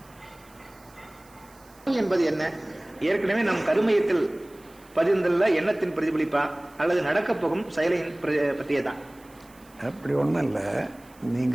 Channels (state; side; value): noise; right; hiss, 27 dB below the sound